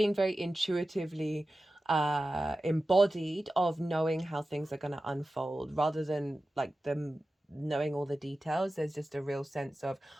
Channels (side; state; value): both; normal; correlation 0.94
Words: very intuitively embodied of knowing how things are going to unfold, rather than like them knowing all the details. There's just a real sense of,